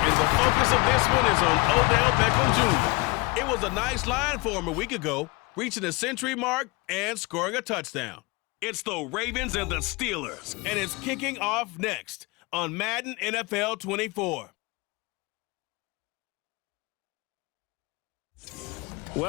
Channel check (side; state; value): right; quieter; 24.6 dB